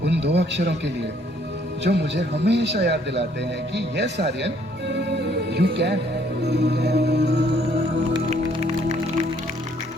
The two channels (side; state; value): both; normal; correlation 0.64